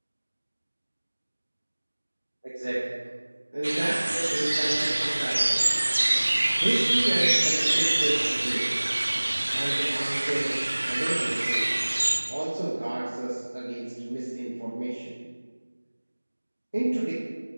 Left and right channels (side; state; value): both; inverted; correlation -1.00